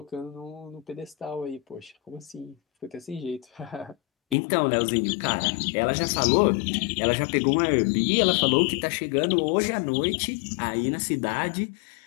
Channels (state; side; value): drops out; right; at 4.4 s